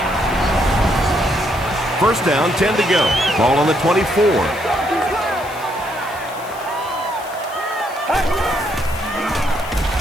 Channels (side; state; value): left; noise; hiss, 19 dB below the sound